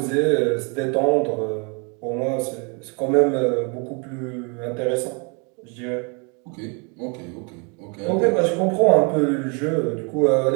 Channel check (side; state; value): left; quieter; 34.3 dB